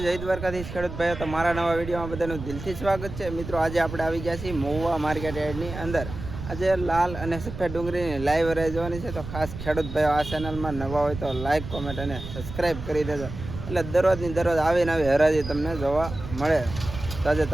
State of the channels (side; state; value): right; noise; rumble, 10 dB below the sound